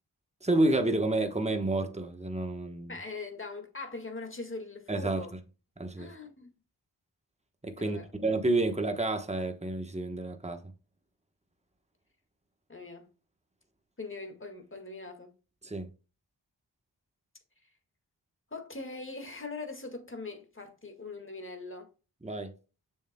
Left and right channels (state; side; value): normal; both; correlation 0.62